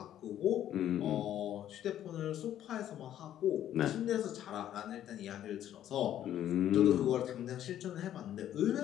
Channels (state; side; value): quieter; right; 11.4 dB